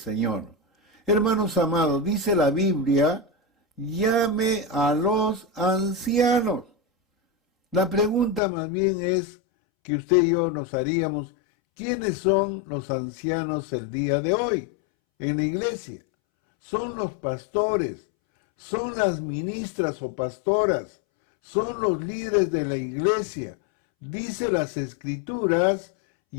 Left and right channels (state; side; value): drops out; right; at 8.4 s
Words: Hermanos amados, dice la Biblia, llame a los ancianos. La pregunta más bien es que usted y yo nos haríamos, ¿quiénes son los ancianos el día de hoy en la iglesia? Son los pastores, son las ministras o pastoras, son los líderes de la iglesia. Dice las Escrituras,